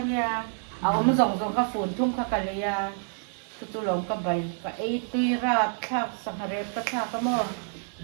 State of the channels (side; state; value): left; silent; 59 dB below the other